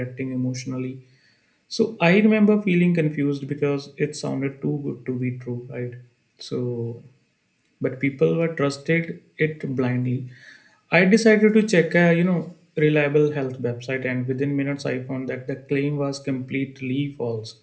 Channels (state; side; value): identical; both; correlation 1.00